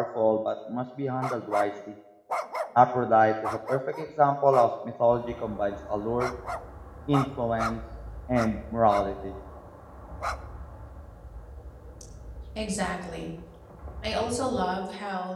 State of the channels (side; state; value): both; identical; correlation 1.00